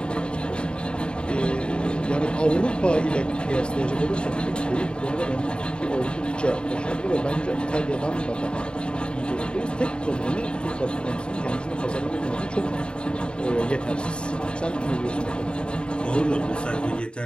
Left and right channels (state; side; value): late; right; 0.052 ms